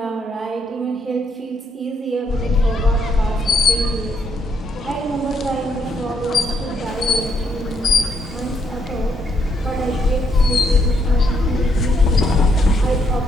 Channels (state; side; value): normal; both; correlation 0.74